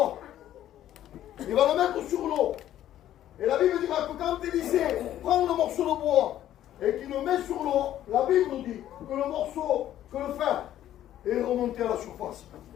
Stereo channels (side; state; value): right; quieter; 12.2 dB